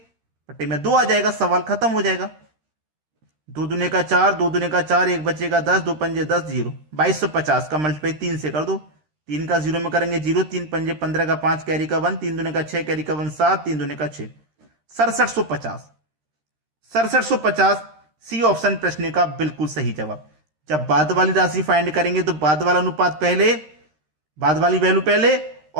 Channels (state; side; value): late; left; 13 ms